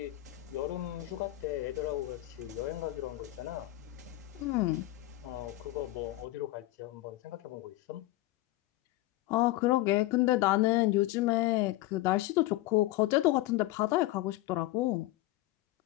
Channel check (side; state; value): right; quieter; 17.3 dB